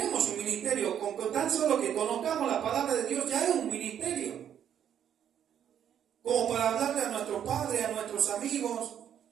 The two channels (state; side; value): quieter; left; 9.4 dB